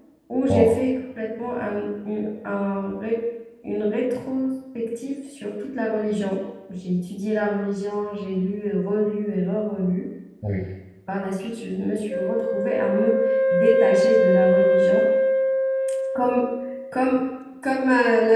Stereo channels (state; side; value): identical; both; correlation 1.00